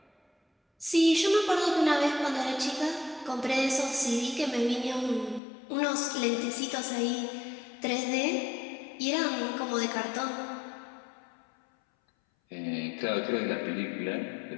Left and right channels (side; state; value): right; drops out; at 5.4 s